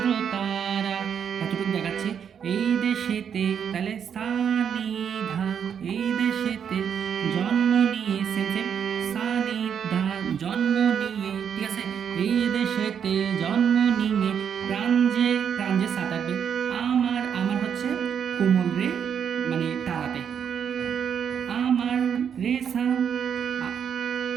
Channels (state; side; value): quieter; left; 7.9 dB